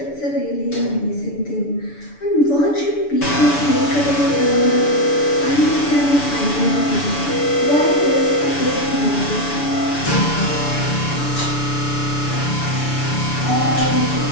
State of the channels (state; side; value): late; right; 6.9 ms